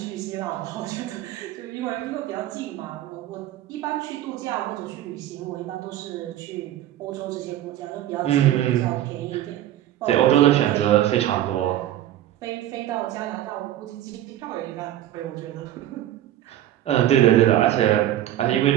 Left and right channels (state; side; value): quieter; left; 12.8 dB